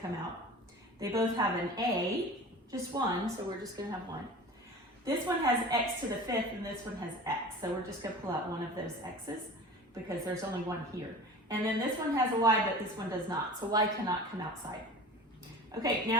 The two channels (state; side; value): normal; both; correlation 0.37